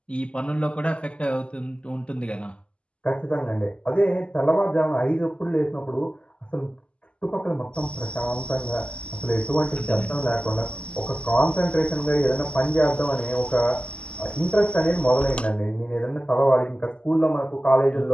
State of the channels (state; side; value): late; right; 0.054 ms